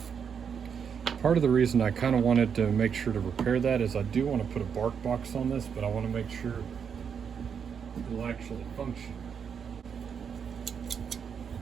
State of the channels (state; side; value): quieter; left; 7.1 dB